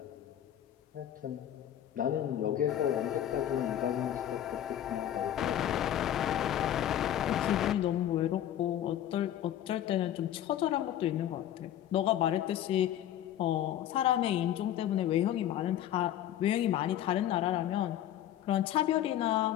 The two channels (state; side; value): quieter; right; 11.4 dB